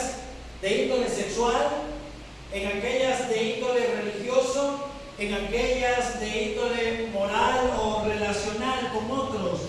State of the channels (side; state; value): both; identical; correlation 1.00